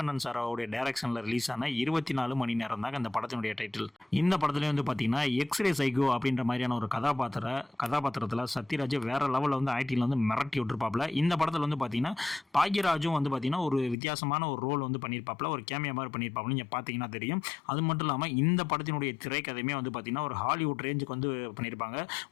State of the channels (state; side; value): drops out; right; at 14.0 s